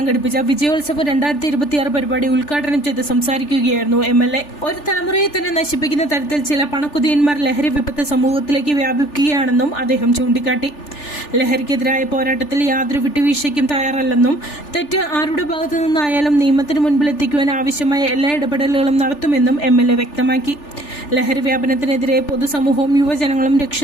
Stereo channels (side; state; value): right; late; 3.4 ms